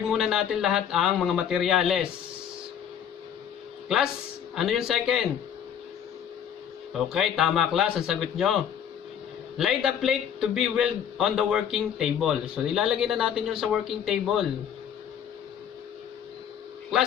muna natin lahat ang mga materyales. Class, ano yung second? Okay, tama, class. Ang sagot nyo. Lay the plate to be welded on the working table. So, ilalagay na natin yung sa working table.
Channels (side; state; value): right; quieter; 8.8 dB